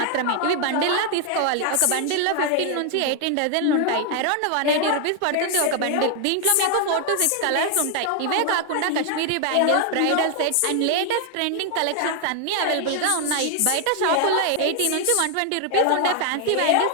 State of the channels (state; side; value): different; both; correlation 0.00